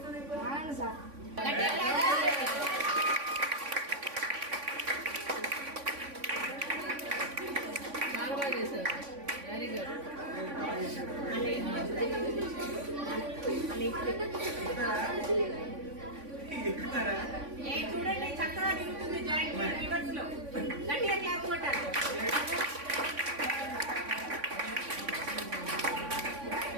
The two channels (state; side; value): late; left; 3.5 ms